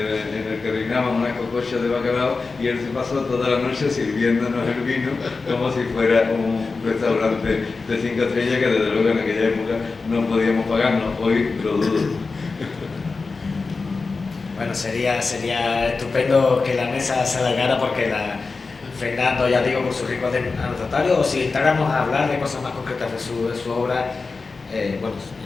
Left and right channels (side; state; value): right; quieter; 4.2 dB